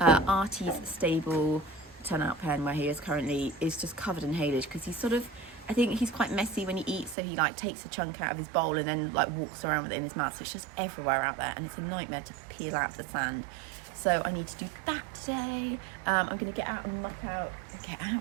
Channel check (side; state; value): left; drops out; at 7.2 s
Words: Artie's stable turnout pen where he is currently is just covered in haylage because I think he's quite messy when he eats, so he like takes a chunk out of his bowl and then like walks around with it in his mouth, so it's just everywhere out there and it's a nightmare to peel out the sand. So I need to do that today. I'm going to get out and muck out,